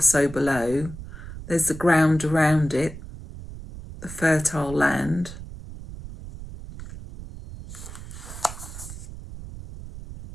so below. There's the ground around it, the fertile land.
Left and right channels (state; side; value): noise; right; rumble, 12 dB below the sound